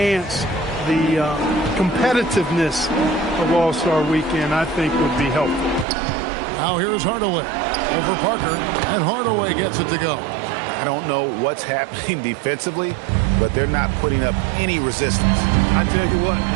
the competitiveness of All-Star Weekend, I think, would be helpful. Now here's Hardaway over Parker, and Hardaway gets it to go. I don't know what's happening defensively, but they're not putting up any resistance. I tell you what,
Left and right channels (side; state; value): left; drops out; at 5.9 s